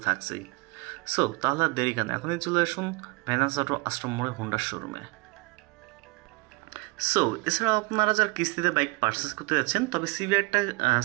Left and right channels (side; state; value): left; quieter; 25.3 dB